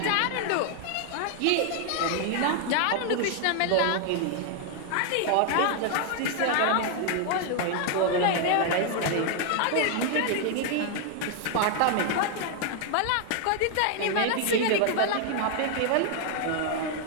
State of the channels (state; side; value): different; both; correlation 0.00